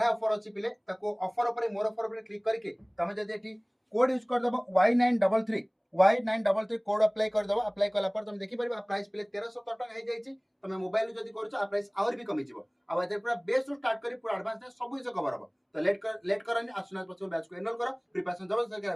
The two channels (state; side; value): identical; both; correlation 1.00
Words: ऑफर अच्छी पिले ऑफर उपर मोर ऑफर उपर क्लिक करके तुम जब code use करदेव Y933 Y933 code apply करदेव। Apply कला तुम देखिपार प्राइस पिले 1317 टका हो जाए। तुम मोबाइल जब कर प्राइस आहरी भी कमिज पूरा बेस स्टार्ट कर पूरा एडवांस सब जिन कवर हम। तो लेट करनी आसुना पॉसिबल बैच को एनरोल कर प्रिपरेशन